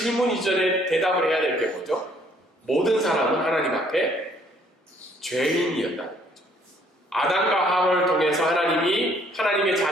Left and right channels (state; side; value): normal; both; correlation 0.63